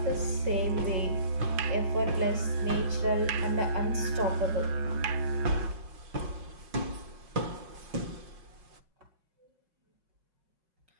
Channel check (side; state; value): left; late; 5.4 ms